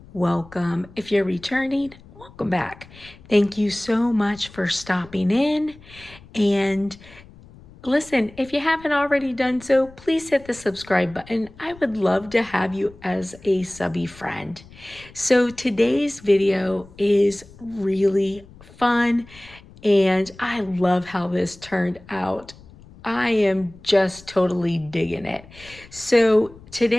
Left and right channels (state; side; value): noise; left; rumble, 22 dB below the sound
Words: welcome. If you're returning, welcome back. Thank you so much for stopping in. And listen, if you haven't already done so, please hit the subscribe button. I would love to have you as a subby friend. So today's video is really fun and I love how this turned out. I am just totally digging it. So